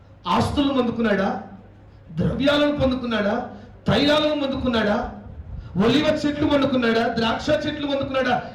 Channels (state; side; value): identical; both; correlation 1.00